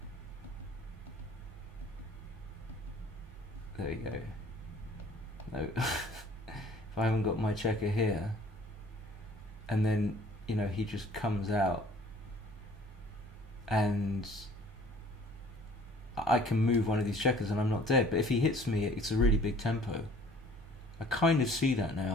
There you go. No, if I haven't got my checker here, and then he just comes out, and I can move one of these checkers and I'm not dead. But if he hits me, it's a really big tempo. I kind of see that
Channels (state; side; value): normal; both; correlation 0.53